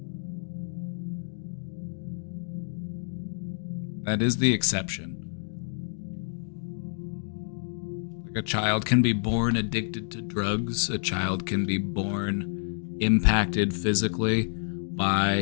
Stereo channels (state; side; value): silent; right; digital silence